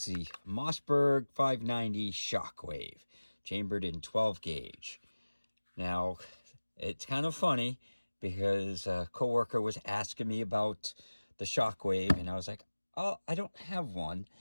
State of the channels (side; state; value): both; inverted; correlation -1.00